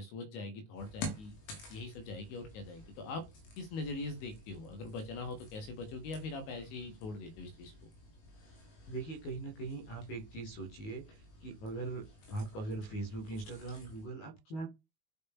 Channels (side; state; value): right; late; 19 ms